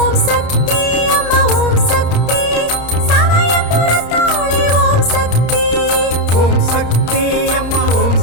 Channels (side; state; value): right; late; 29 ms